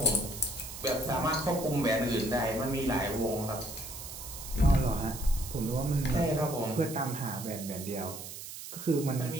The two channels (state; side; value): noise; right; hiss, 10 dB below the sound